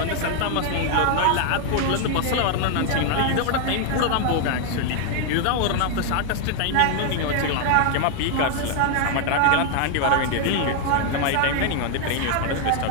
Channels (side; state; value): both; different; correlation 0.00